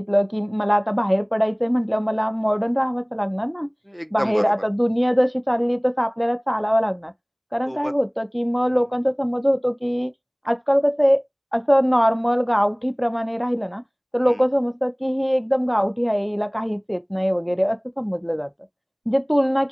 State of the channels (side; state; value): both; identical; correlation 1.00